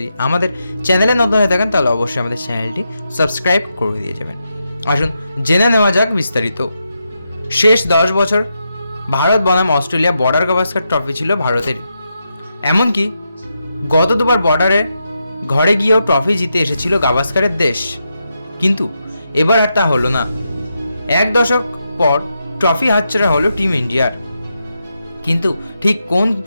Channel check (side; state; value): both; inverted; correlation -0.85